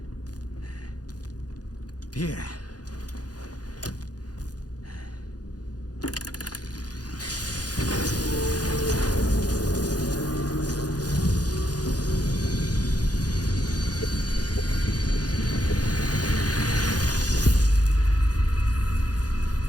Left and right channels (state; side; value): late; right; 0.68 ms